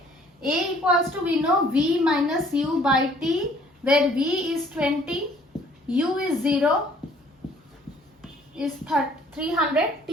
A equals to, we know, V minus U by T, where V is 20, U is 0, is 300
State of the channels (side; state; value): both; normal; correlation 0.58